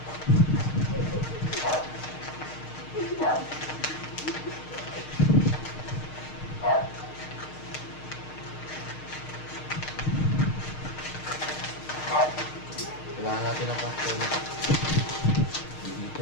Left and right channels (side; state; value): right; late; 6.5 ms